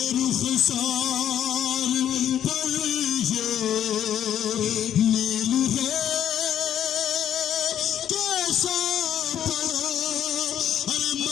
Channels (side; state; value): right; quieter; 10.2 dB